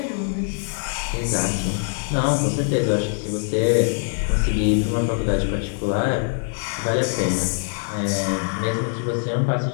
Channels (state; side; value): silent; right; 56 dB below the other